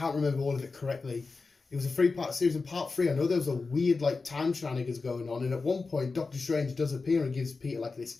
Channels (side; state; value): right; quieter; 4.2 dB